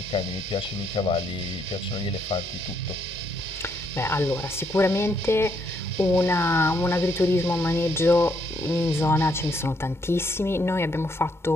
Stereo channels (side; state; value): both; normal; correlation 0.73